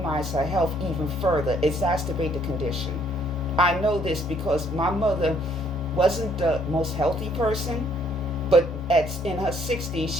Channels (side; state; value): both; normal; correlation 0.65